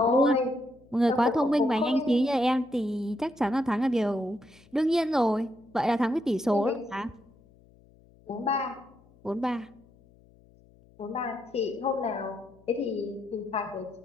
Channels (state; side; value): noise; left; hum, 28 dB below the sound